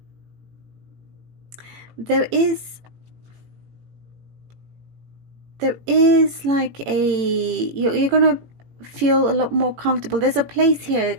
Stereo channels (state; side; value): late; left; 18 ms